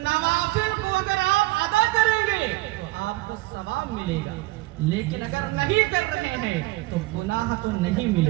کو اگر آپ ادا کریں گے تو آپ کو ثواب ملے گا، لیکن اگر نہیں کر رہے ہیں تو گناہ تو نہیں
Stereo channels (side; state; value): left; quieter; 19.9 dB